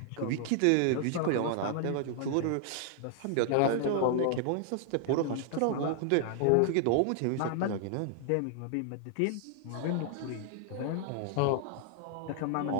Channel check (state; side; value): different; both; correlation 0.00